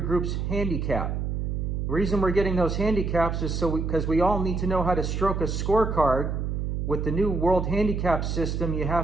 handicap. The reason we're getting those handicaps is because we all need to know how to stroke a scorecard. With the new World Handicap system, you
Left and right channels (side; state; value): right; noise; hum, 1 dB below the sound